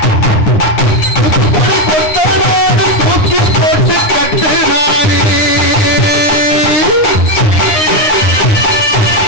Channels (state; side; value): late; right; 9.8 ms